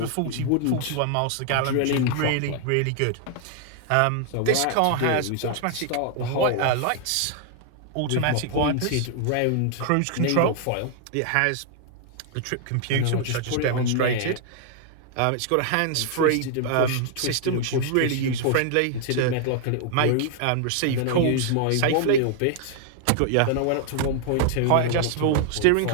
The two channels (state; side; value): different; both; correlation 0.00